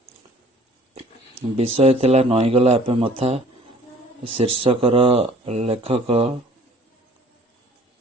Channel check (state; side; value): normal; both; correlation 0.53